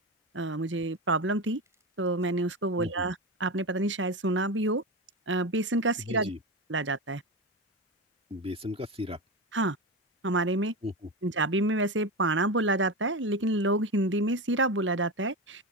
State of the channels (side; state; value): both; normal; correlation 0.19